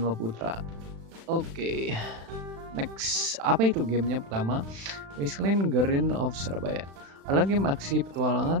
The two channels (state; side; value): late; left; 36 ms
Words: Putra. Oke, next. Apa itu gamenya? Pertama, Wasteland Guardian of Surabaya adalah game aksi